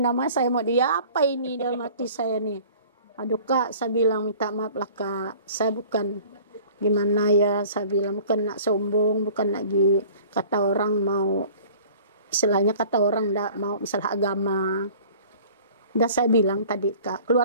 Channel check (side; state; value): both; inverted; correlation -0.48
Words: saya mau dia apa ini dalam hati saya nih. Aduh Kak, saya bilang minta maaf lah Kak. Saya bukan gimana ya, saya bilang bukan nak sombong, bukan lagi kata orang mau, istilahnya kata orang ndak mau masalah agama. Udah saya bilang tadi Kak,